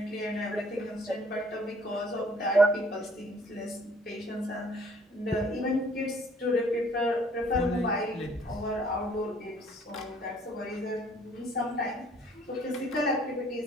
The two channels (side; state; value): both; normal; correlation 0.58